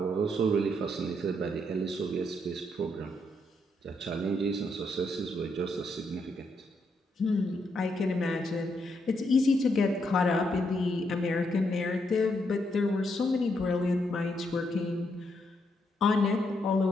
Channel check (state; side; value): normal; both; correlation 0.77